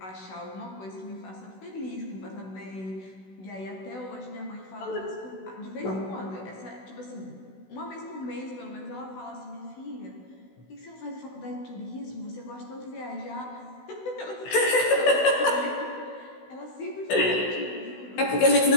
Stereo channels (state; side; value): late; right; 16 ms